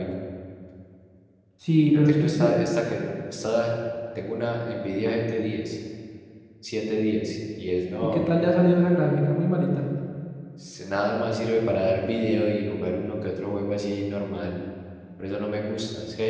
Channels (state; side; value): identical; both; correlation 1.00